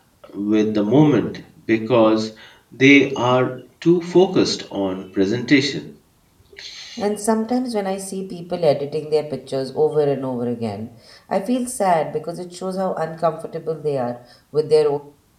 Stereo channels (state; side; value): identical; both; correlation 1.00